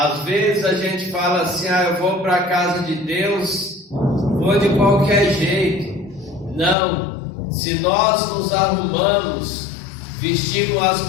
vezes a gente fala assim, eu vou para a casa de Deus, vou de qualquer jeito. Não, se nós nos arrumamos, vestimos as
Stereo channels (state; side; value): drops out; right; at 6.8 s